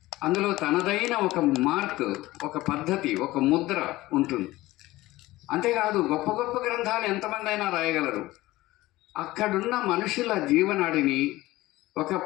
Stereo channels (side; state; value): right; quieter; 18.0 dB